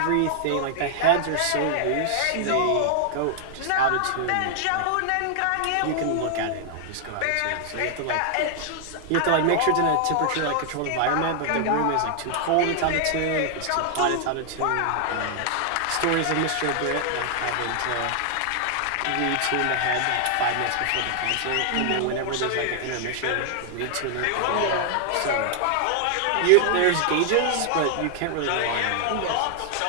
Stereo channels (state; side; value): different; both; correlation 0.00